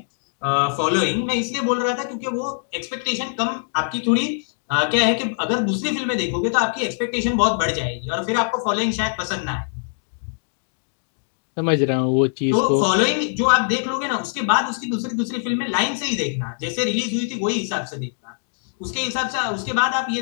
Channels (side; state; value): right; silent; digital silence